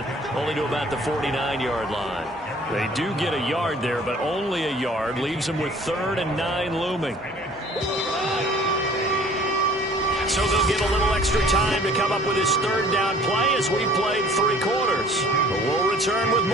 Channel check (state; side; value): normal; both; correlation 0.52